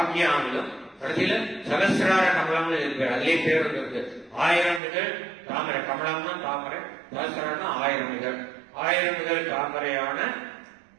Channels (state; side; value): drops out; left; at 4.8 s